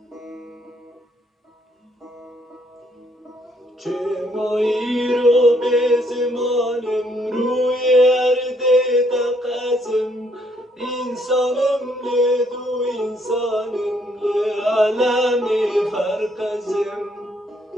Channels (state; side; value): normal; both; correlation 0.69